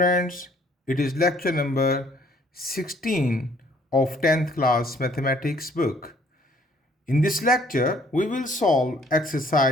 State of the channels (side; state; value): both; normal; correlation 0.61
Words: it is lecture number 16 of 10th class mathematics book. In this lecture, we will solve